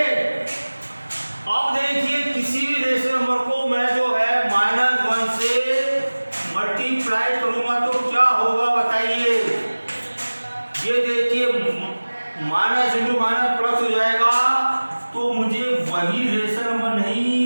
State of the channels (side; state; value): both; inverted; correlation -1.00